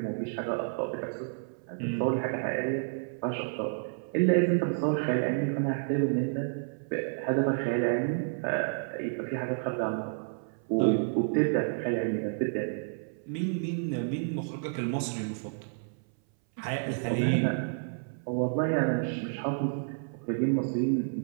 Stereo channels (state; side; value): silent; left; 58 dB below the other